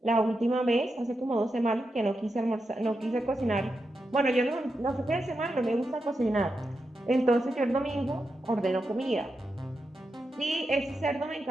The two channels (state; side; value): normal; both; correlation 0.87